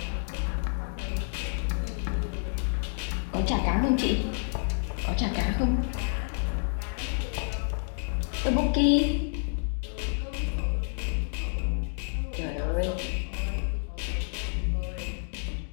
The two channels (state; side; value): silent; right; digital silence